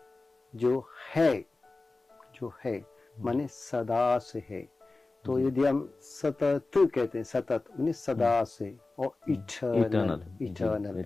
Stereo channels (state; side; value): quieter; right; 3.4 dB